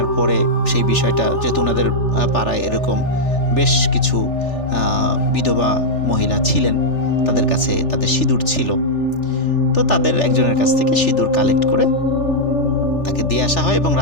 পরে সেই বিষয়টা, যেহেতু ওনাদের পাড়ায় এরকম বেশ কিছু বিধবা মহিলা ছিলেন, তাদের কাছে তাদের সিঁদুর ছিল, তো তাদের একজনের কাছ থেকে সিঁদুর কালেক্ট করে তাকে দিয়ে আসা হয় এবং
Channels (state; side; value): late; right; 3.4 ms